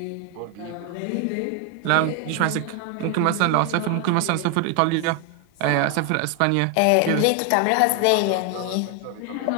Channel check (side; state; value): both; different; correlation 0.01